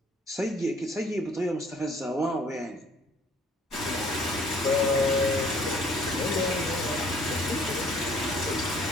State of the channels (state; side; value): normal; both; correlation 0.57